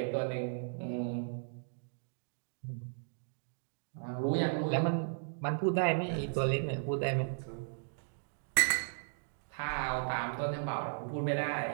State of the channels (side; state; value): left; silent; digital silence